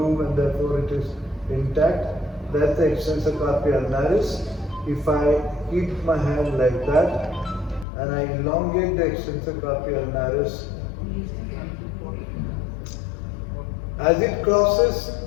and therefore it is intact. That's the extensor carpi ulnaris. If I keep my hand like that and I elongate the extensor carpi ulnaris, as it crosses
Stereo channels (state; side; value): drops out; right; at 7.9 s